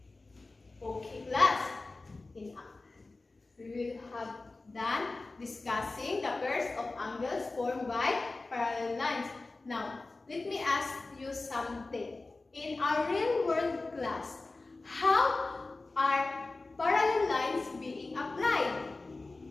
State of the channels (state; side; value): quieter; right; 3.4 dB